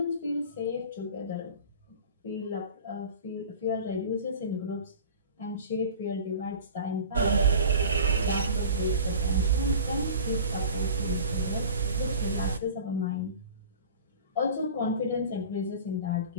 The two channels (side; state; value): both; inverted; correlation -0.40